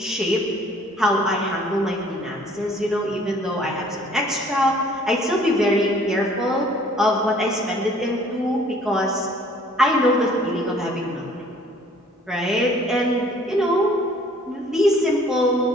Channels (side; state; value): both; normal; correlation 0.56